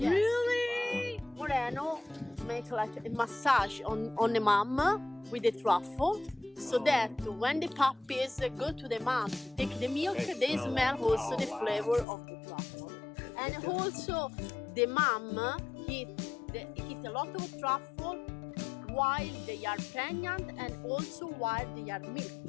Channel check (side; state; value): right; drops out; at 12.1 s